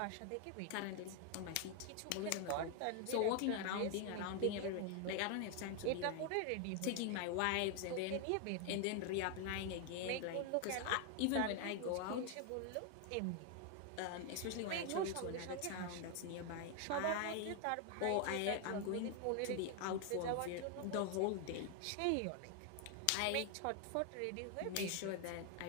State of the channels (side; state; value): both; different; correlation 0.00